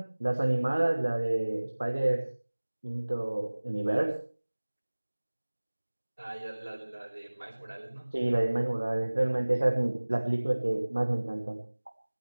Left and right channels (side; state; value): both; inverted; correlation -1.00